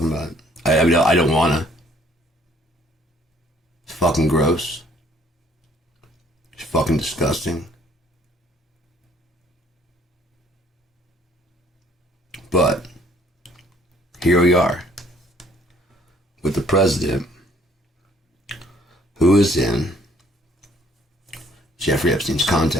about it. I mean, I don't wanna. It's fucking gross. It's fucking disgusting. But, here we are. With the president, who is in Jeffrey Epstein's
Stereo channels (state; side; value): normal; both; correlation 0.61